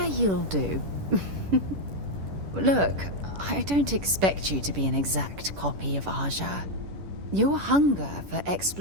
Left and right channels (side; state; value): left; late; 11 ms